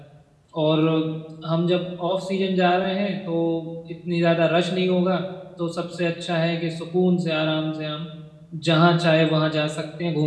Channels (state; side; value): identical; both; correlation 1.00